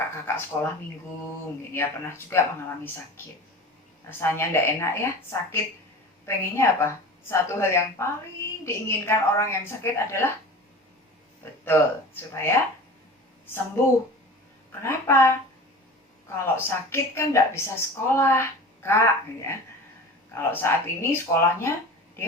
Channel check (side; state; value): both; normal; correlation 0.36